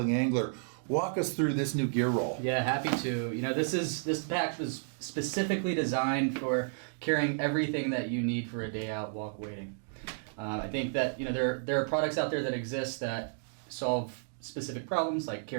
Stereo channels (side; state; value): left; silent; digital silence